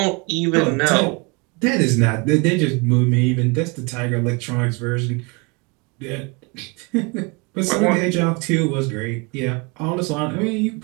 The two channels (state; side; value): quieter; left; 29.9 dB